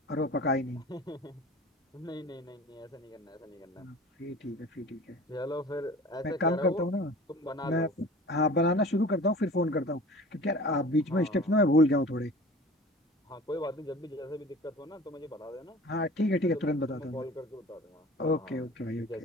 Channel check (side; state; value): both; normal; correlation 0.42